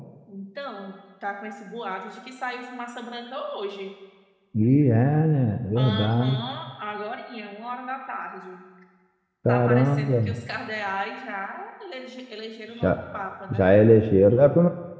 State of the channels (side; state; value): both; identical; correlation 1.00